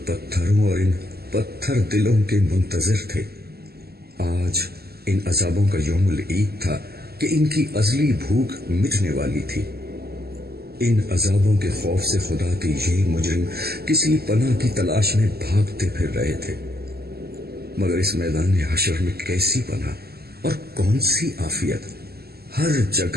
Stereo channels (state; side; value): late; left; 0.46 ms